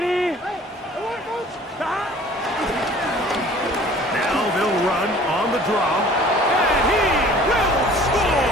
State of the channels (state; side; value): normal; both; correlation 0.49